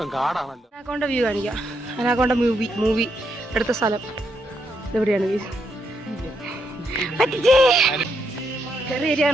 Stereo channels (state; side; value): normal; both; correlation 0.78